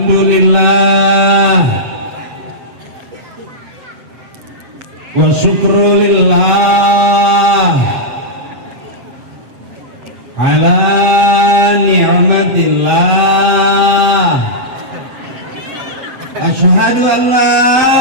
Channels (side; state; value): left; late; 7.8 ms